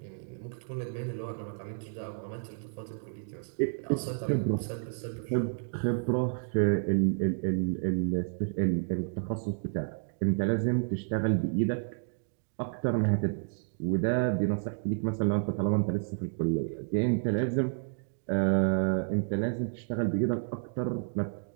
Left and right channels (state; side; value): silent; left; digital silence